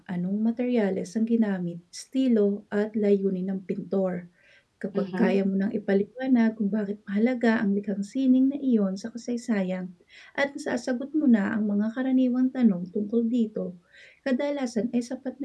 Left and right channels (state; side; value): identical; both; correlation 1.00